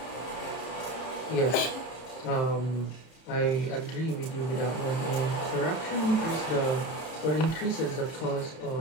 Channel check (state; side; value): late; right; 33 ms